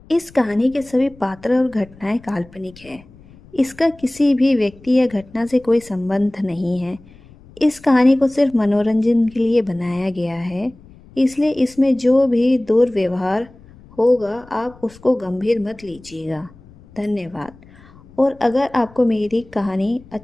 इस कहानी के सभी पात्र और घटनाएं काल्पनिक हैं। इसका किसी भी व्यक्ति या घटना से कोई संबंध नहीं है। इस कहानी को सिर्फ मनोरंजन के लिए बनाया गया है, इसलिए इसमें जो भी दुर्व्यवहार होगा आप उसको गंभीर मत लीजिएगा। धन्यवाद। और अगर आपको मेरी कहानी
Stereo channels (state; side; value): noise; left; rumble, 24 dB below the sound